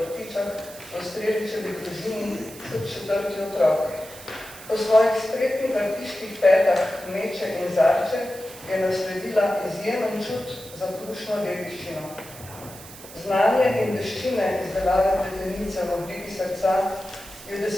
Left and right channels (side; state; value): right; noise; hiss, 17 dB below the sound